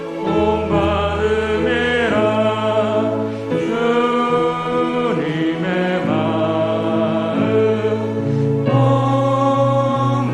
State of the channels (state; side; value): identical; both; correlation 1.00